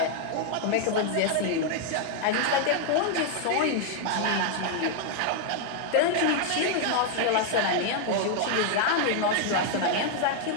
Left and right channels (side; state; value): both; different; correlation 0.00